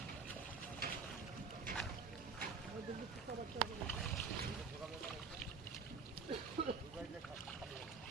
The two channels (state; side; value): quieter; left; 5.1 dB